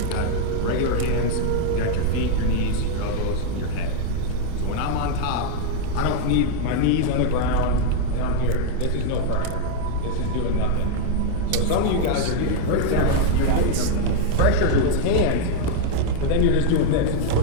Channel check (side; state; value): both; different; correlation 0.00